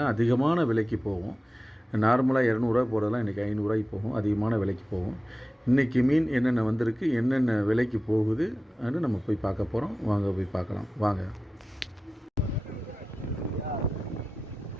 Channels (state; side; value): normal; both; correlation 0.95